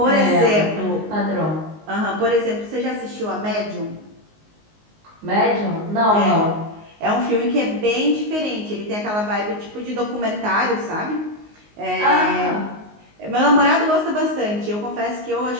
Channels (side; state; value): left; late; 19 ms